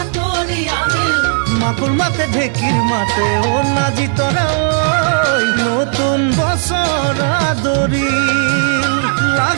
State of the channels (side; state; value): left; silent; digital silence